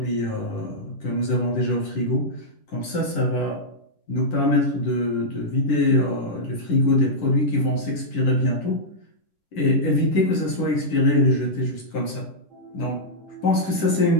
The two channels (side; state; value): right; late; 10 ms